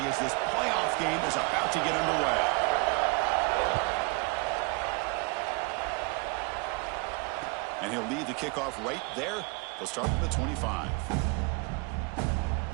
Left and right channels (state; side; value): quieter; left; 29.6 dB